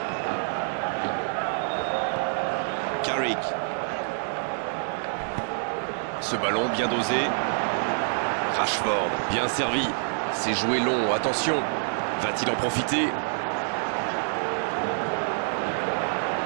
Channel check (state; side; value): silent; left; digital silence